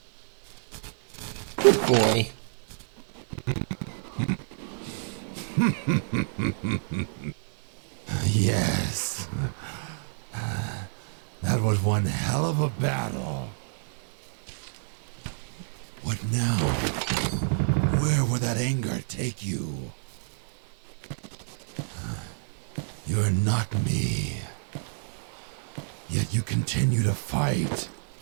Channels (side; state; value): left; silent; digital silence